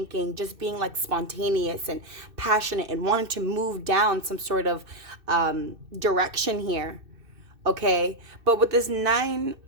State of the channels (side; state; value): left; late; 2.6 ms